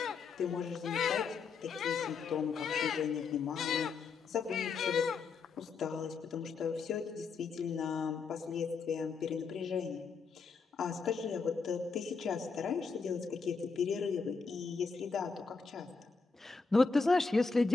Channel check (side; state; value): right; quieter; 4.9 dB